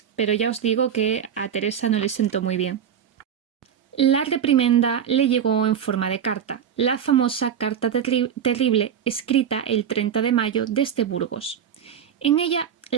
pero ya os digo que a Teresa no le sentó muy bien. La reprimenda le llegó en forma de carta, la famosa Carta Terrible, escrita el 30 de mayo desde Burgos. En ella,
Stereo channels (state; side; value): quieter; left; 8.5 dB